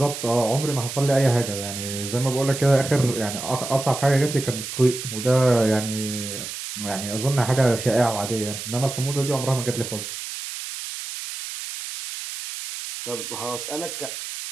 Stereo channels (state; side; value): noise; right; hiss, 8 dB below the sound